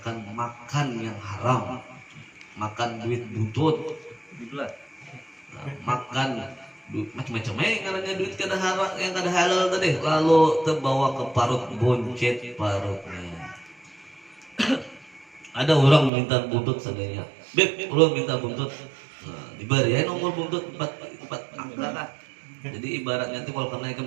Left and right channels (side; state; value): left; drops out; at 16.1 s